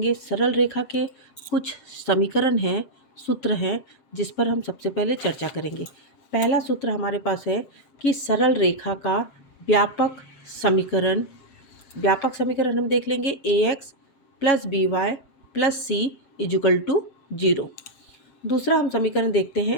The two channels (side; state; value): right; late; 7.3 ms